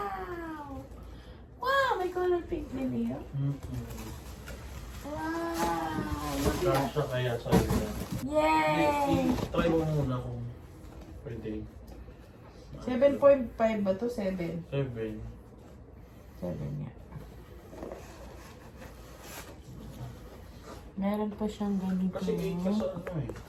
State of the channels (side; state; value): both; identical; correlation 1.00